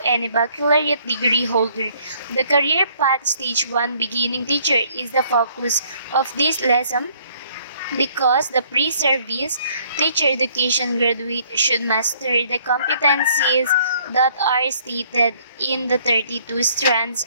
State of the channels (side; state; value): both; inverted; correlation -0.62